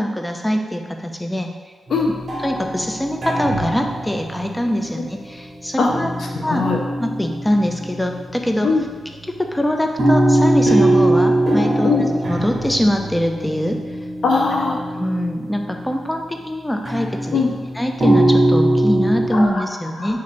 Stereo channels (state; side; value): normal; both; correlation 0.92